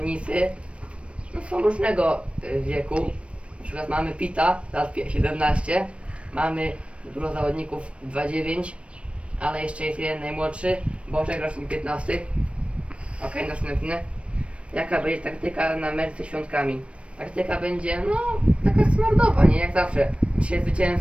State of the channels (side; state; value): left; late; 0.060 ms